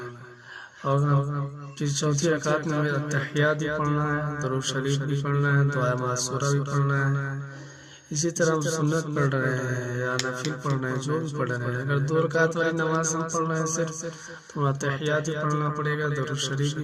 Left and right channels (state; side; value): identical; both; correlation 1.00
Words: اور پھر چوتھی رکعت میں ہمیں تحیات بھی پڑھنا ہے، درود شریف بھی پڑھنا ہے، دعائے معصورہ بھی پڑھنا ہے۔ اسی طرح ہم سنت پڑھ رہے ہیں یا نفل پڑھ رہے ہیں، جو بھی پڑھ رہے ہیں، اگر 2 رکعت والی نماز ہم پڑھ رہے ہیں صرف، تو ہمیں تحیات بھی پڑھنا پڑے گا، درود شریف